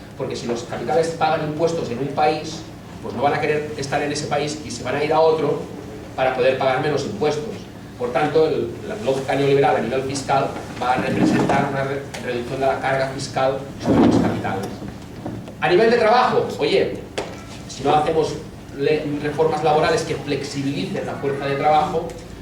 porque si los capitales pagan impuestos en un país, pues no van a querer estar en ese país y se van a ir a otro para poder pagar menos impuestos. Por tanto, la lógica neoliberal a nivel fiscal va a representar una reducción de la carga fiscal sobre los capitales. A nivel de trabajo, oye, si no hacemos reformas laborales que flexibilicen la fuerza de trabajo,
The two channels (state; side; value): identical; both; correlation 1.00